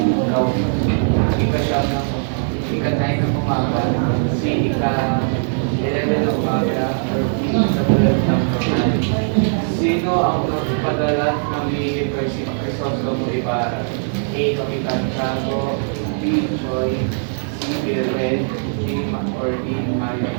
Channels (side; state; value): left; silent; 65 dB below the other